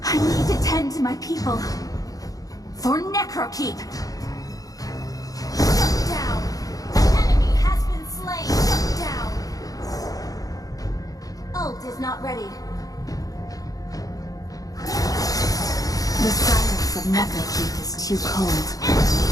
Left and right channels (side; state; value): right; late; 0.17 ms